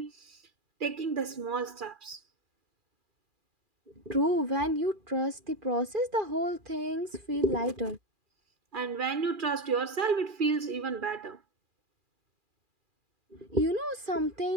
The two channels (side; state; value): left; late; 2.4 ms